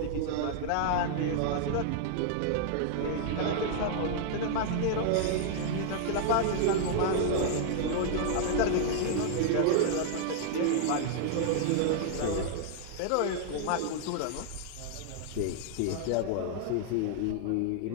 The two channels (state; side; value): different; both; correlation -0.01